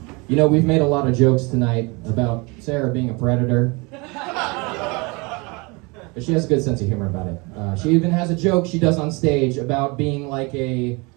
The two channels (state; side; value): quieter; left; 27.5 dB